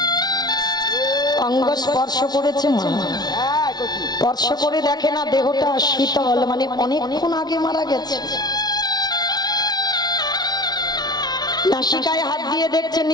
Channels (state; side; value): late; right; 0.19 ms